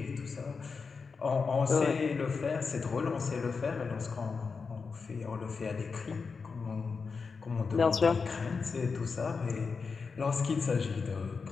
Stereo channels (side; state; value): right; quieter; 5.0 dB